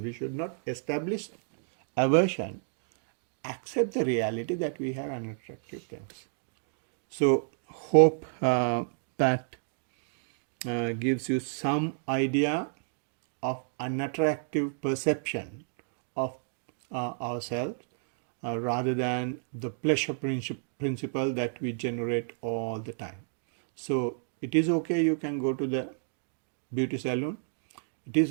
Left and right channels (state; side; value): silent; left; digital silence